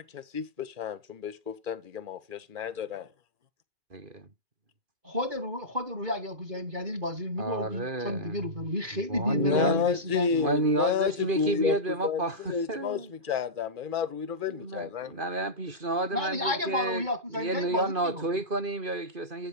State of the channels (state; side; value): late; left; 2.4 ms